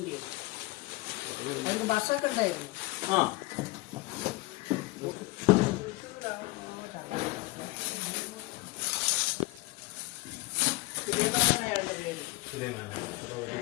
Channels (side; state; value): right; quieter; 22.0 dB